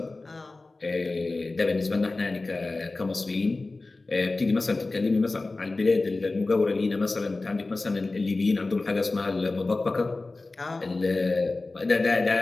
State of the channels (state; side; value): quieter; right; 3.3 dB